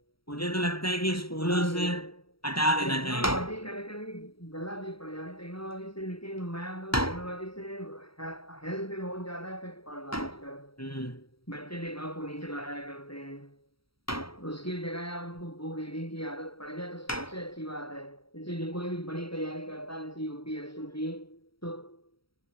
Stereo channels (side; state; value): right; late; 0.75 ms